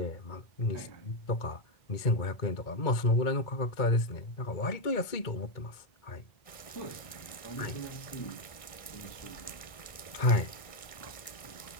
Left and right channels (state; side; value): late; right; 1.6 ms